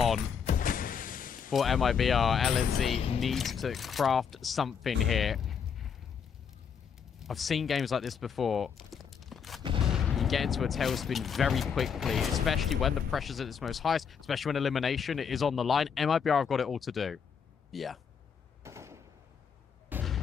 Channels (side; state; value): right; quieter; 7.0 dB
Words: for MIBR. LNZ needs to craft something here. I've seen games like this before. You get into a tailspin very quickly, especially when the pressure's at its most highest, especially when elimination is on the line. MIBR have got it all to do. Yeah.